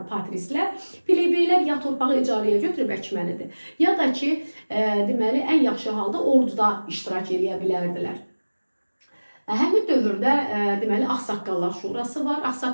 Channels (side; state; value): both; inverted; correlation -1.00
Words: patrislər. Plebeylər ya torpağı icarəyə götürüb əkməlidir, ya da ki, deməli, ən yaxşı halda orduda iştirak edə bilərdilər. Həmin dövrdə deməli Ağsaqqallar Şurası var.